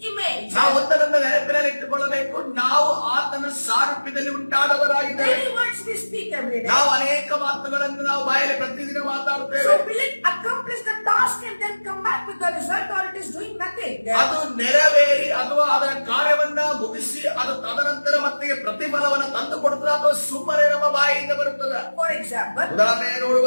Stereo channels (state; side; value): inverted; both; correlation -1.00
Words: image. ನಾವು ಒಂದರಿಂದ ನೆನಪಿನಲ್ಲಿ ಇಟ್ಟುಕೊಳ್ಳಬೇಕು, ನಾವು ಆತನ ಸಾರೂಪ್ಯದಲ್ಲಿ ಉಂಟಾದವರಾಗಿದ್ದೇವೆ. Many words we speak every day. ನಾವು ಅನೇಕ ಮಾತುಗಳನ್ನು ನಾವು ಬಾಯಲ್ಲಿ ಪ್ರತಿದಿನ ಮಾತಾಡುತ್ತೇವೆ. So will it accomplish the task and then come back with the result, or it is doing nothing? ಅದು ನೆರವೇರಿ ಅಥವಾ ಅದರ ಕಾರ್ಯವನ್ನ ಮುಗಿಸಿ ಅದು ತದನಂತರ ಮತ್ತೆ ಪ್ರತಿಫಲವನ್ನು ತಂದು ಕೊಡುತ್ತದೆ ಅಥವಾ ಸುಮ್ಮನೆ ನಮ್ಮ ಬಾಯಿಯಿಂದ ಬರುತ್ತದೆ. For example, ಉದಾಹರಣೆ